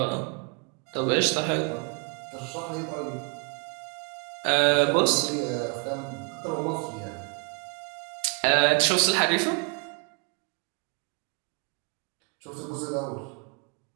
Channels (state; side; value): quieter; left; 35.9 dB